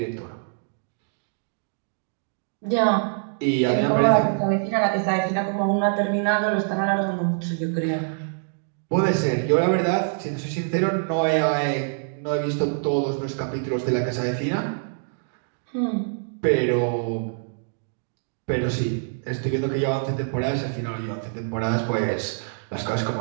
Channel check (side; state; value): left; silent; digital silence